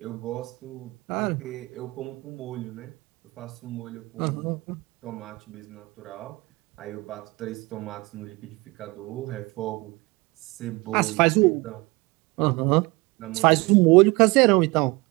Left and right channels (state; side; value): quieter; left; 23.9 dB